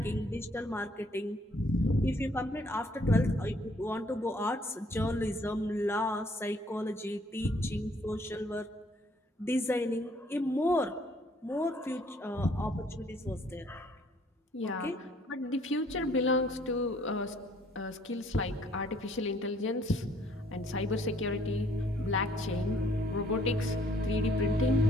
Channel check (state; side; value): normal; both; correlation 0.63